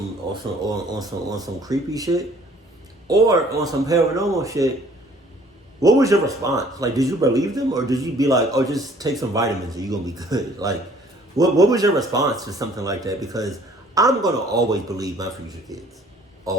some creepy shit or on some paranormal shit? What was your response? Like, did you believe them, or did you be like, "Oh, just take some vitamins and you're gonna be good"? Like, what was your response to something like that? Because I'm gonna always believe my future kids,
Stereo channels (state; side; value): normal; both; correlation 0.56